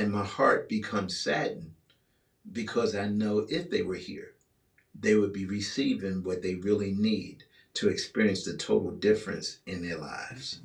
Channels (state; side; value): identical; both; correlation 1.00